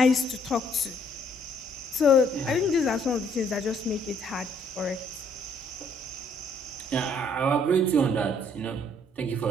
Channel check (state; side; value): normal; both; correlation 0.65